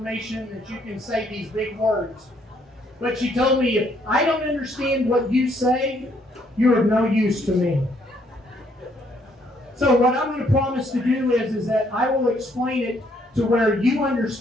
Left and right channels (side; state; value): both; normal; correlation 0.69